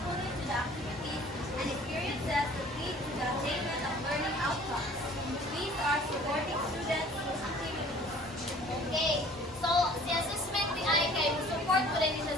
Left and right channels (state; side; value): normal; both; correlation 0.51